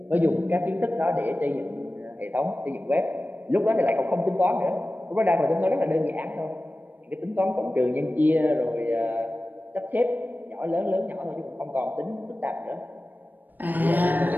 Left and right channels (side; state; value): left; late; 0.088 ms